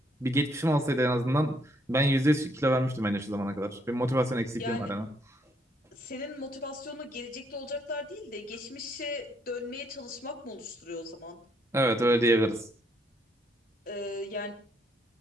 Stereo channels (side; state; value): both; normal; correlation 0.71